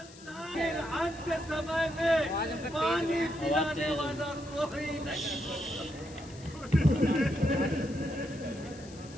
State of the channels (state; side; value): noise; left; hiss, 20 dB below the sound